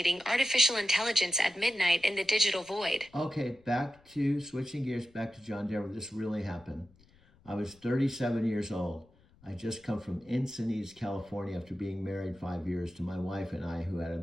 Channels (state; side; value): noise; left; rumble, 29 dB below the sound